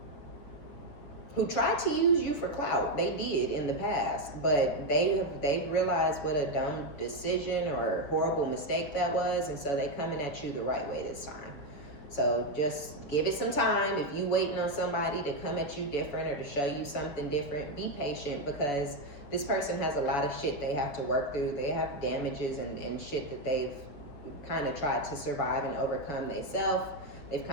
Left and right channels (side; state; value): right; late; 6.8 ms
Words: tried to use you for clout. They did in the past, but they've realized what a dumb decision or horrible mistake that was, and so they coming at you the right way this time. So just give it some time. If you waiting on somebody to come at you different or to show you something different, be patient, because this person has a lot of shit they have to work through. They have damages and shit that they've kind of tried to survive and overcome themselves. They've